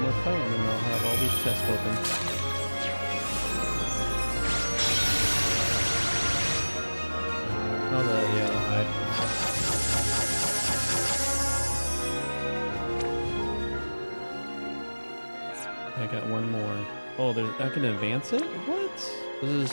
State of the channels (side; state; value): both; inverted; correlation -1.00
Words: more fight, and then I'll have all these chests open. Oh, the hide. I got one more. Oh, I can advance it? What? Does it